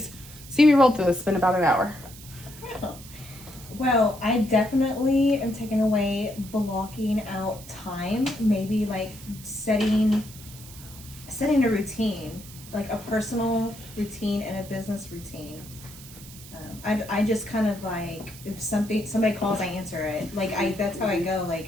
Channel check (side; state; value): right; noise; hiss, 17 dB below the sound